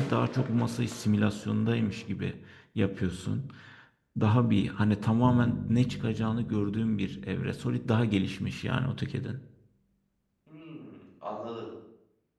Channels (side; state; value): both; identical; correlation 1.00